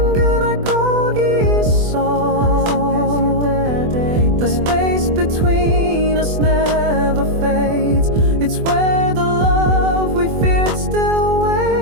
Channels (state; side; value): late; left; 24 ms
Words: 그날 거기 있어. The space between us never fades. It's where the love we feared still